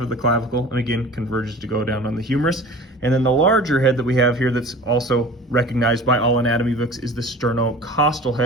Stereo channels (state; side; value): normal; both; correlation 0.41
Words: the clavicle and again converges to go down on the humerus. And then the larger head that we have here that's also recognized by all anatomy books is the sternocostal